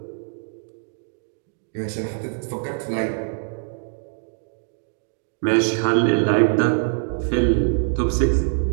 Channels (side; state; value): left; silent; digital silence